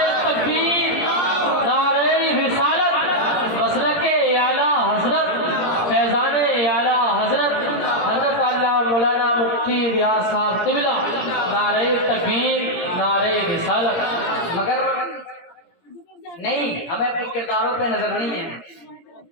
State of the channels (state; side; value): late; right; 17 ms